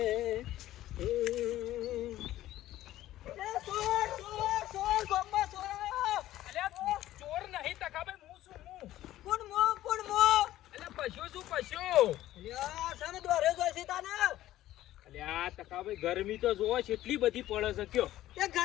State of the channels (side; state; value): right; quieter; 14.3 dB